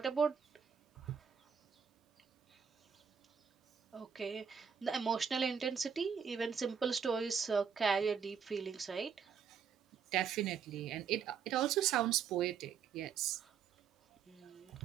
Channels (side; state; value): left; quieter; 6.9 dB